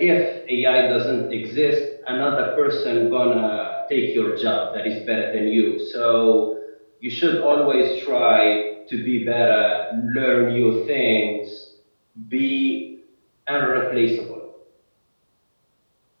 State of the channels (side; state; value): both; inverted; correlation -1.00